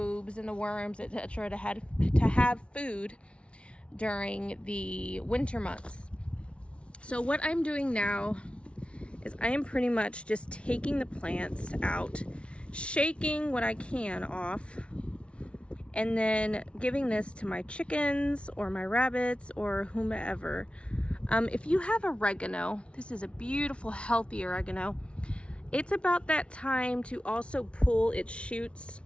and the worms, etc. to have food during the winter months. So what I'm doing now is I am pretty much just taking the plants out, shaking what I can off, and then giving this to my chickens or my rabbits or whomever. If you have oregano, this is a beautiful, healthy oregano. It's about that time to also pull its shoots.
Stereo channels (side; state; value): right; late; 0.059 ms